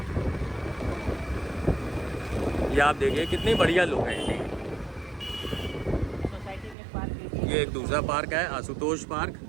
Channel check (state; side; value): drops out; left; at 6.8 s